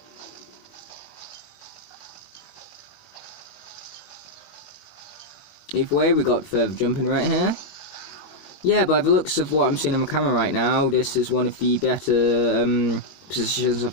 Either way, we got further jumping right here. Yeah, by the looks of what I'm seeing on my camera right now, this is one of the better positions of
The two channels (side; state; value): right; late; 21 ms